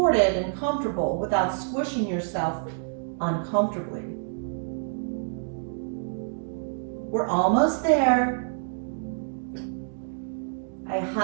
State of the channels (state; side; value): silent; left; digital silence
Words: and comfortable without squishing yourself uncomfortably. We're almost there. I